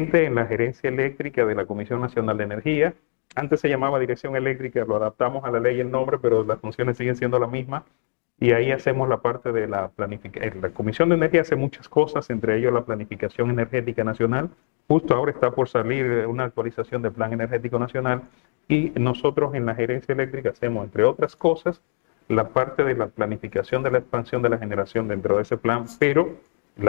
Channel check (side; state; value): right; silent; digital silence